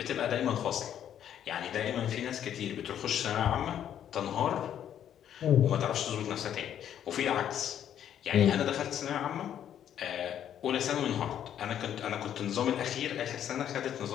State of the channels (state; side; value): quieter; right; 10.0 dB